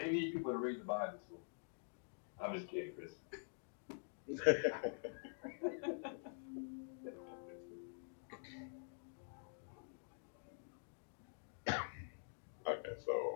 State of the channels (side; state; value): right; silent; digital silence